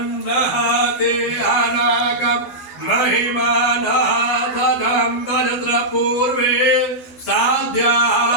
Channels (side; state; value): right; late; 11 ms